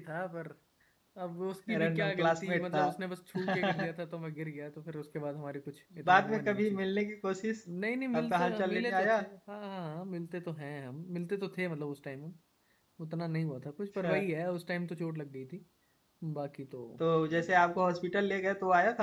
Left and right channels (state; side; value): identical; both; correlation 1.00